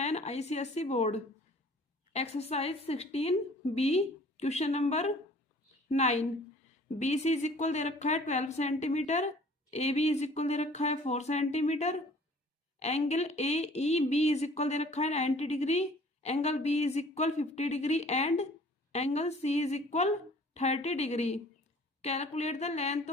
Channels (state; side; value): normal; both; correlation 0.52